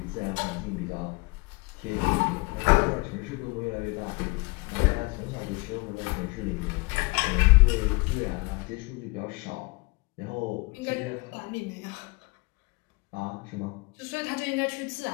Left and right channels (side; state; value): right; quieter; 26.4 dB